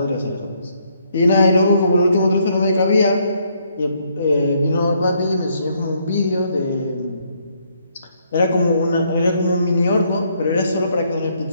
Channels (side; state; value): both; inverted; correlation -0.71